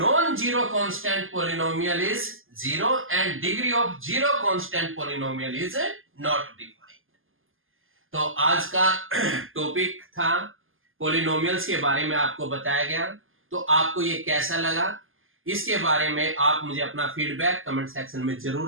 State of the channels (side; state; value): left; late; 0.59 ms